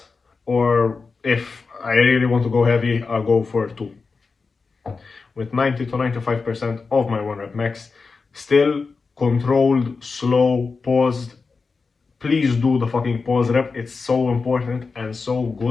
or if I really want to go heavy, I'll go for 2 with 90 to 95% of my 1 rep max. Still controlled, slow, paused. Please do the fucking pause rep. It's so important and so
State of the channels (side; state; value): right; quieter; 4.5 dB